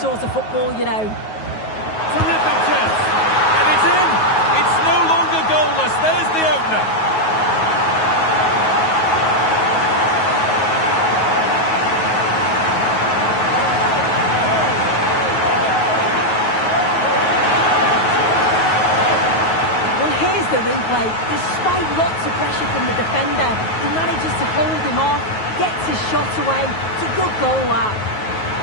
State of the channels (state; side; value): late; right; 9.4 ms